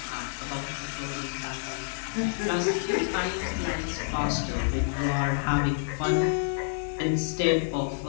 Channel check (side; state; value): right; silent; digital silence